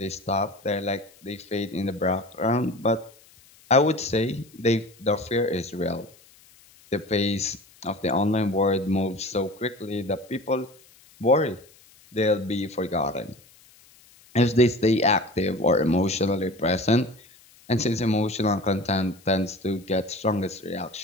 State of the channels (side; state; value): left; noise; hiss, 27 dB below the sound